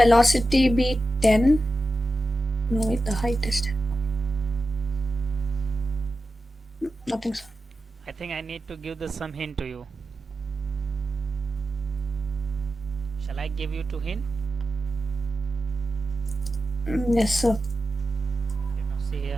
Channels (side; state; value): both; normal; correlation 0.91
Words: be 10? No, wait, the height is 10. Nothing, sir. I think I need to give the some hint to you. Shall I give you two hint? Yes, sir. Okay, now see